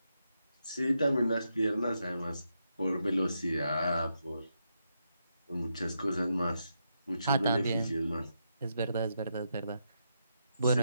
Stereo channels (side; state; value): both; inverted; correlation -0.82